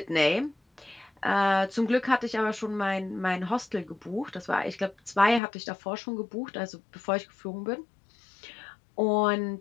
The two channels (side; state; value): right; drops out; at 5.4 s